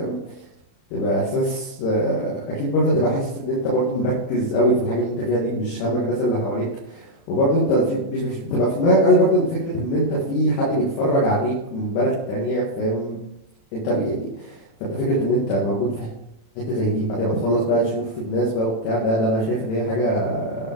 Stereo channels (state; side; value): late; right; 36 ms